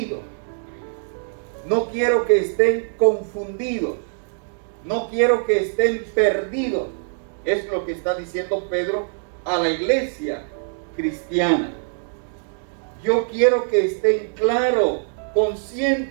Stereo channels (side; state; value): left; silent; digital silence